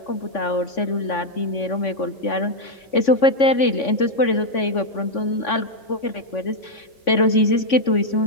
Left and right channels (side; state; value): right; late; 3.5 ms